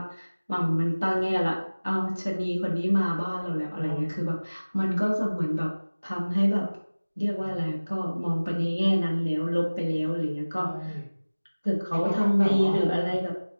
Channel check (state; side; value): inverted; both; correlation -1.00